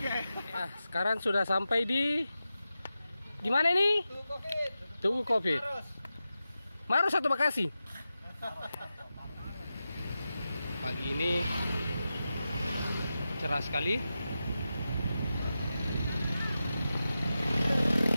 Ya, sekarang sudah sampai di mana ini? Tugu Covid. Maros atau Bekasi? Pagi ini cerah sekali.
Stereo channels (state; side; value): inverted; both; correlation -0.92